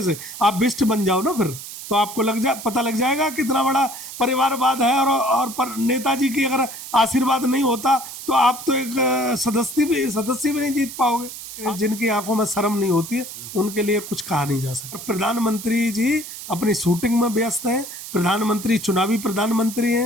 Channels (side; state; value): right; noise; hiss, 11 dB below the sound